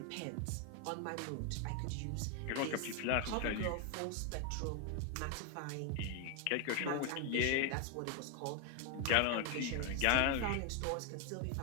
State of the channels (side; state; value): both; different; correlation 0.01